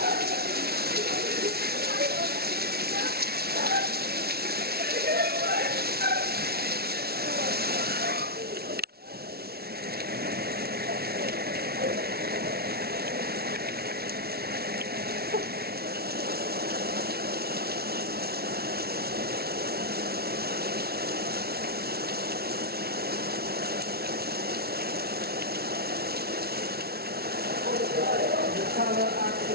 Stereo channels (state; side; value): late; left; 0.45 ms